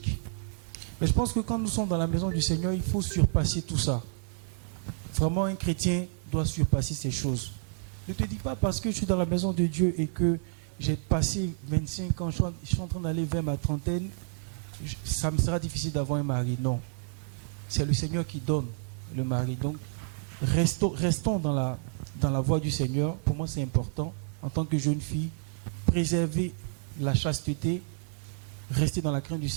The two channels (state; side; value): silent; left; digital silence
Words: Mais je pense que quand nous sommes dans la maison du Seigneur, il faut surpasser tout ça. Vraiment, un chrétien doit surpasser ces choses. Ne te dis pas parce que je suis dans la maison de Dieu et que j'ai passé 25 ans, je suis en train d'aller vers ma trentaine, ça me sera difficile d'avoir un mari. Non. C'est le Seigneur qui donne le mari. Donc, restons dans la voie du Seigneur. Pour moi, c'est important. En tant que jeune fille, préserver la chasteté, rester dans la crainte du